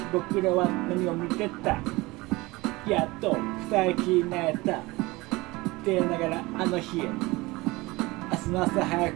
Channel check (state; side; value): quieter; left; 21.9 dB